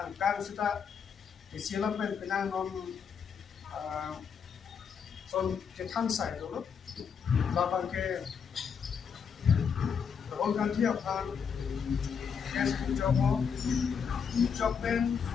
sita isilam pen pinang non son ketan side lo, labang ke Rahul Gandhi apaan, kes joben,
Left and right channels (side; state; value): right; quieter; 6.7 dB